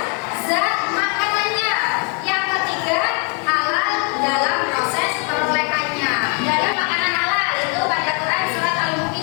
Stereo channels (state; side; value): quieter; right; 36.6 dB